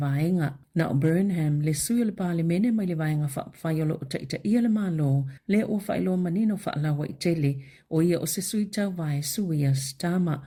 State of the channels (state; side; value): identical; both; correlation 1.00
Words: Na o Burnham le sui o le pale mene mai le vaenga whapawhaia lo o taita ia le malo le o whailo manino whaalawa I tele o ia o se sui tau vae sui a Stama